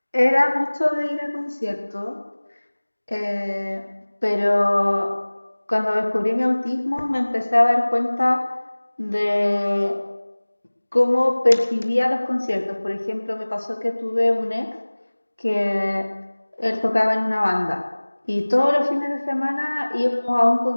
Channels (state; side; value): inverted; both; correlation -1.00